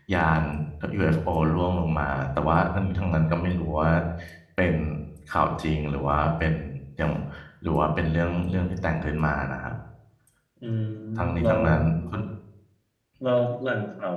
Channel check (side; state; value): both; identical; correlation 1.00